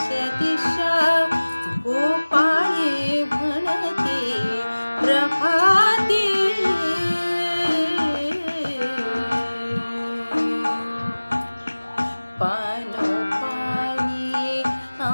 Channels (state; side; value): inverted; both; correlation -1.00